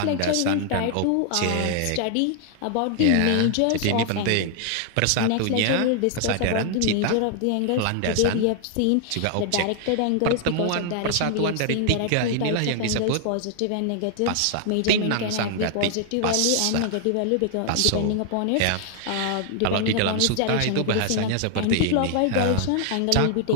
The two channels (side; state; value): both; different; correlation 0.00